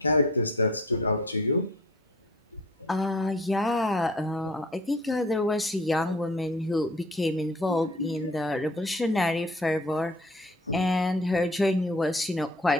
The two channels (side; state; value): both; normal; correlation 0.48